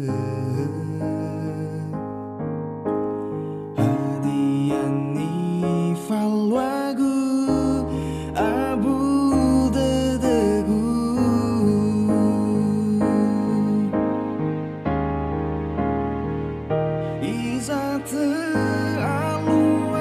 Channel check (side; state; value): both; identical; correlation 1.00